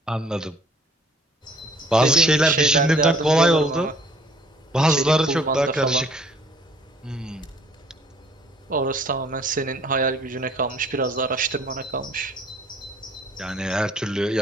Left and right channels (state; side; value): normal; both; correlation 0.57